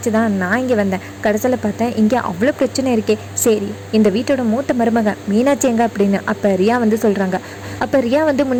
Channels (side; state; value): both; identical; correlation 1.00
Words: தான் நான் இங்கே வந்தேன், கடைசியில் பார்த்தேன் இங்கே அவ்வளோ பிரச்சனை இருக்கே, சரி இந்த வீட்டோட மூத்த மருமக மீனாட்சி எங்க அப்படின்னு. அப்போ ரியா வந்து சொல்கிறாங்க. அப்போ ரியா வந்து